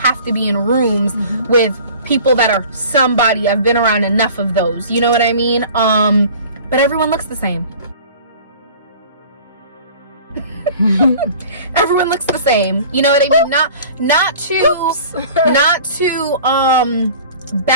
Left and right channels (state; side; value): inverted; both; correlation -0.44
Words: to be in rooms with people that are somebody. I've been around enough of those, you know what I mean? But everyone looks the same. Everyone looks the same, you know what I mean? Not to